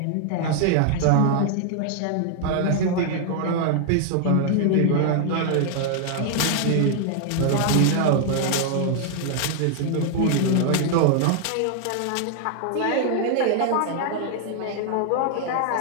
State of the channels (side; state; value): both; different; correlation 0.00